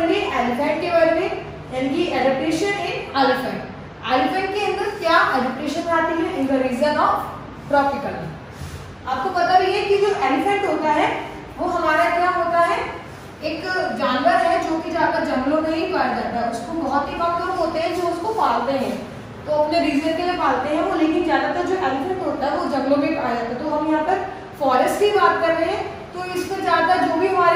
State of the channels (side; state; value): both; identical; correlation 1.00